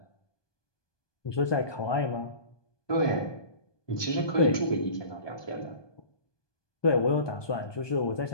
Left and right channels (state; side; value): late; right; 1.2 ms